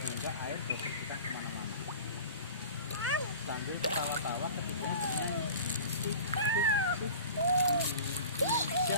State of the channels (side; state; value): both; inverted; correlation -0.39